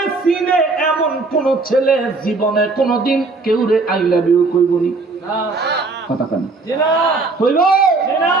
সিনে এমন কোন ছেলে জীবনে কোনদিন কেউ রে আই লাভ ইউ কইবনি। কথা কেন কইব?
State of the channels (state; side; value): quieter; left; 3.7 dB